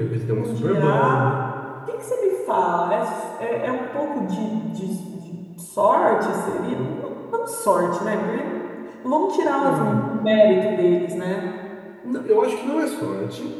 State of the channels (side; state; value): both; identical; correlation 1.00